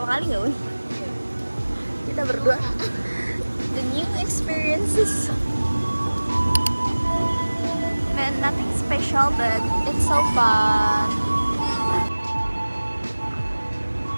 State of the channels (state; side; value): inverted; both; correlation -1.00